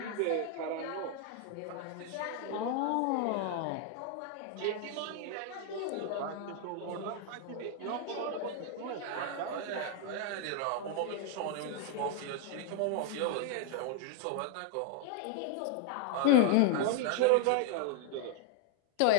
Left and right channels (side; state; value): both; different; correlation 0.00